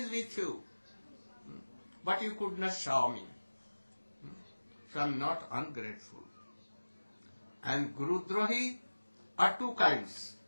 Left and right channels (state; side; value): inverted; both; correlation -1.00